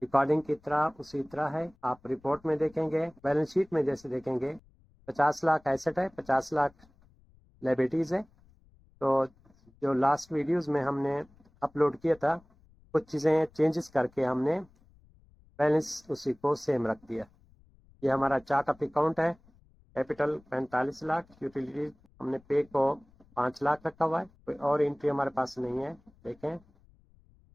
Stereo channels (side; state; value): left; noise; rumble, 29 dB below the sound